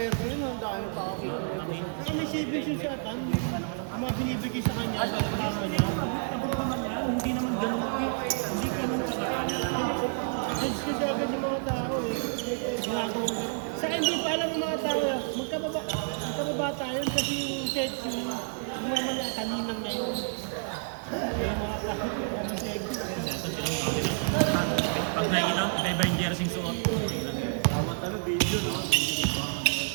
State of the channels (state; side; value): silent; left; digital silence